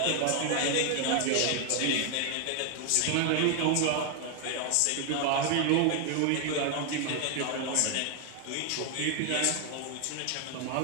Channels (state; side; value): different; both; correlation 0.01